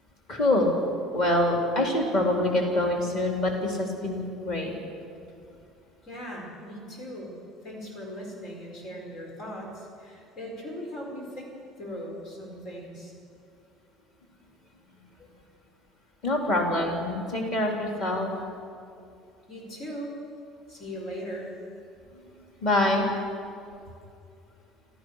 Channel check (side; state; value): both; normal; correlation 0.44